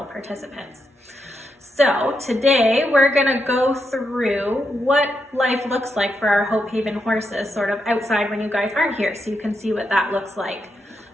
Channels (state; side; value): normal; both; correlation 0.83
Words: participants. So today we're going to go through what life looks like for our Hope Haven horses sort of outside when you guys aren't here, so you can see what that looks like.